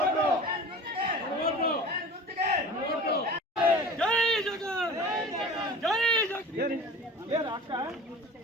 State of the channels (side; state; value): both; normal; correlation 0.39